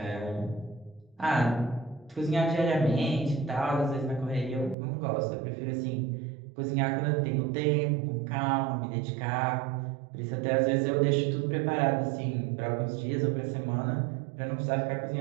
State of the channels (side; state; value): left; drops out; at 4.8 s